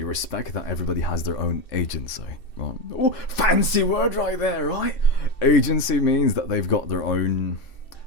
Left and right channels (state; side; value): late; right; 2.6 ms